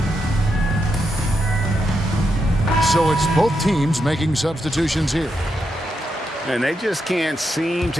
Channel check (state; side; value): normal; both; correlation 0.83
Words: So it's both teams making substitutions here. And they just can't seem